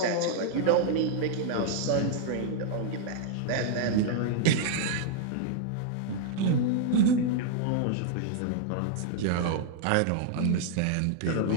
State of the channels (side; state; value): both; different; correlation 0.00